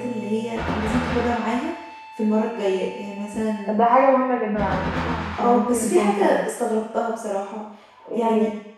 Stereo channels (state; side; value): identical; both; correlation 1.00